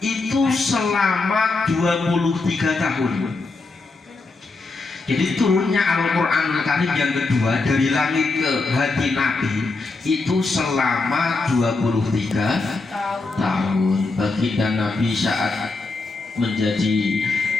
selama 23 tahun. Jadi turunnya Al-Quranul Karim yang kedua dari langit ke hati Nabi itu selama 23 tahun. Baginda Nabi saat menjadi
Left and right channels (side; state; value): right; quieter; 3.6 dB